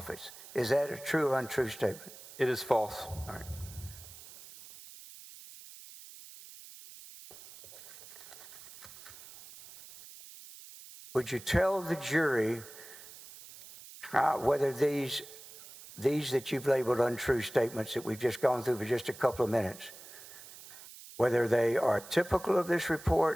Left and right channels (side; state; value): right; noise; hiss, 17 dB below the sound